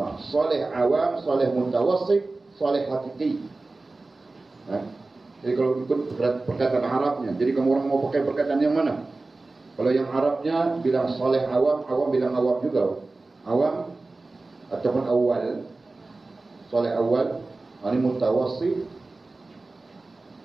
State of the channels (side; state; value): left; quieter; 3.3 dB